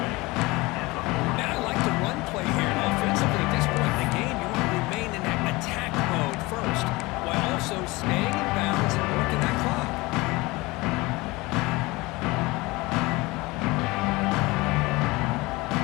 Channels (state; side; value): quieter; right; 22.5 dB